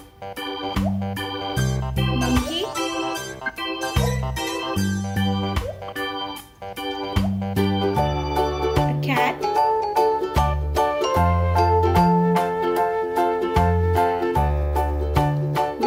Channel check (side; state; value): both; identical; correlation 1.00